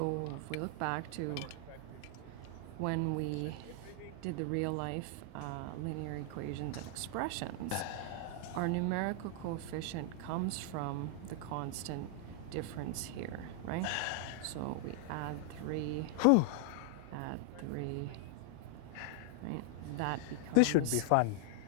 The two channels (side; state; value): both; different; correlation 0.00